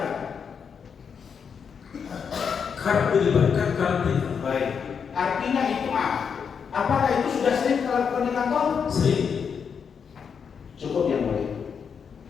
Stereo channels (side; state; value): right; quieter; 6.6 dB